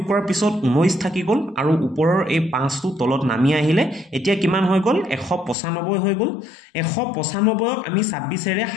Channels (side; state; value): right; drops out; at 5.6 s